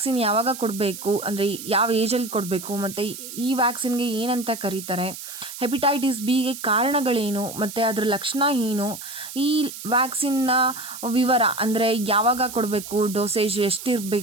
ಯಾವಾಗ ಕೊಡಬೇಕು, ಅಂದರೆ ಯಾವ ಏಜಲ್ಲಿ ಕೊಡಬೇಕು, ಮತ್ತು ಈ ವ್ಯಾಕ್ಸಿನ್ಗೆ ಏನಂತ ಕರೀತಾರೆ, ಹೆಪಟೈಟಿಸ್ ಬಿಗೆ ಕಾರಣಗಳೇನು ಮತ್ತು ಅದರ ಲಕ್ಷಣ ಏನು, ಈ ವ್ಯಾಕ್ಸಿನ್ನ ವಿವರ ಅಂದರೆ ಯಾವಾಗ ಕೊಡಬೇಕು, ಡೋಸೇಜ್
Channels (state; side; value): noise; right; hiss, 11 dB below the sound